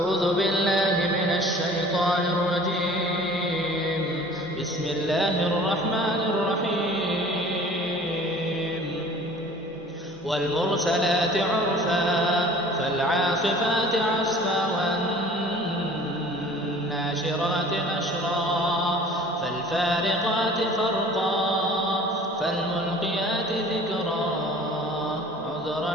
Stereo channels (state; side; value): normal; both; correlation 0.47